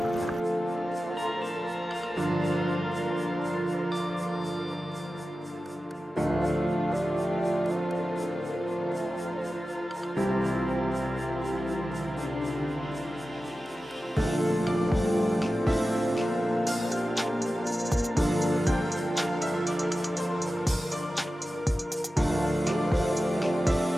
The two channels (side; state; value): both; normal; correlation 0.94